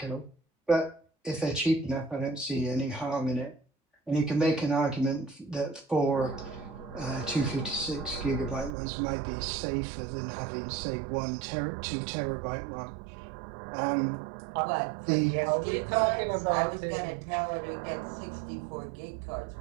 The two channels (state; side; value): drops out; left; at 8.8 s